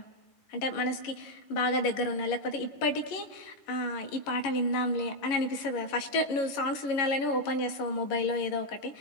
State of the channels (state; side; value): late; right; 11 ms